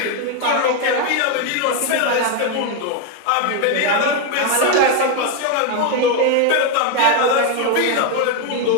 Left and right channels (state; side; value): different; both; correlation 0.01